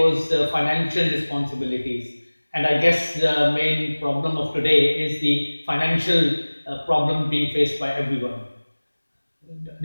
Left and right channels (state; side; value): inverted; both; correlation -1.00